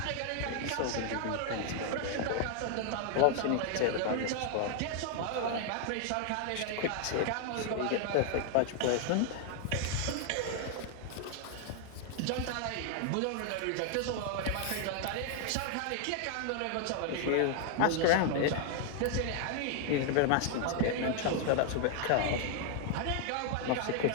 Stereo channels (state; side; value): different; both; correlation 0.00